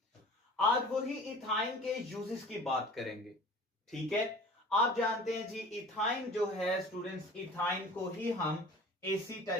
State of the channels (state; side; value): normal; both; correlation 0.43